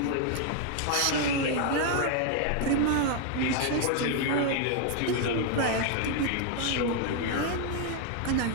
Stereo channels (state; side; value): different; both; correlation 0.00